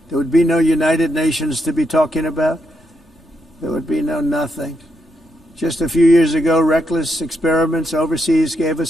There would be no United Nations to be talking about. There would be no nothing. Just a few years ago, reckless experiments overseas gave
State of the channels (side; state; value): both; normal; correlation 0.81